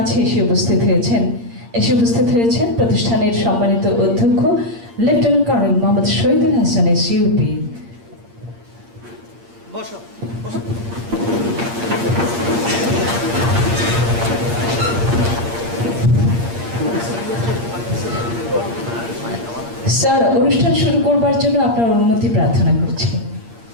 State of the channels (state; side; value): late; left; 8.6 ms